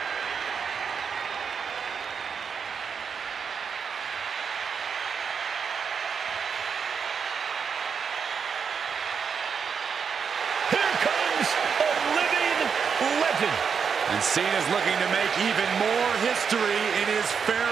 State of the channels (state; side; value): quieter; left; 6.4 dB